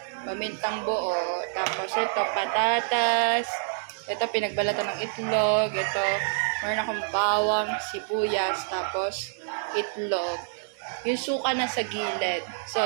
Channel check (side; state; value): left; silent; digital silence